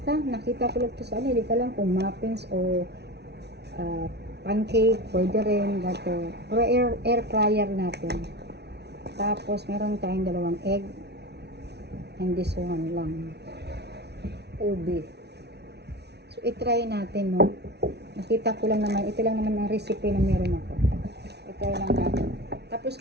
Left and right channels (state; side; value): late; left; 0.49 ms